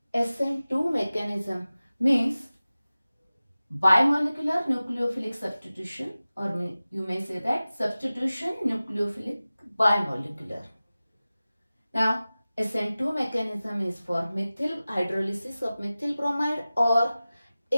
SN2 mechanism, means biomolecular nucleophilic substitution, or you may say that substitution nucleophilic biomolecular. Now, SN2 mechanism is for methyl hydrolysis of methyl bromide or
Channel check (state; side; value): inverted; both; correlation -0.97